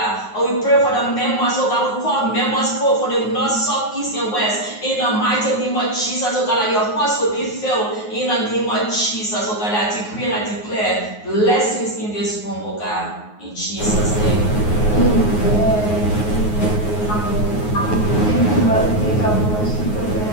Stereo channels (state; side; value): late; right; 9.5 ms